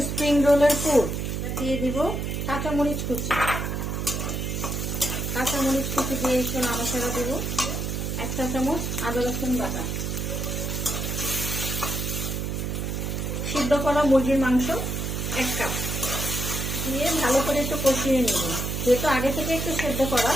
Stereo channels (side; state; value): right; noise; hum, 2 dB below the sound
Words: স্প্রিং রোলের পুর। দিয়ে দিব কাঁচামরিচ কুচি। কাঁচামরিচ কুচি দিয়ে একটু নাড়াচাড়া দিব। 1 চা চামচ আদা রসুন বাটা, সিদ্ধ করা মুরগির মাংস 1 কাপ দিয়ে ভালো করে একটু কষিয়ে নিব, যেহেতু আগে থেকে একটু সেদ্ধ করা।